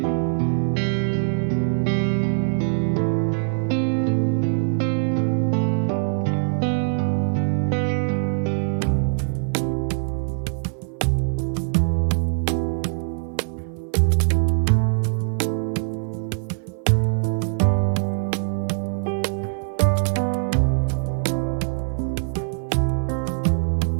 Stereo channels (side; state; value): left; silent; 57 dB below the other